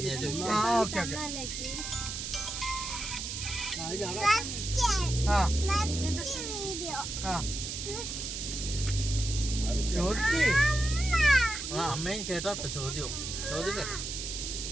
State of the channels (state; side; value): noise; right; hiss, 5 dB below the sound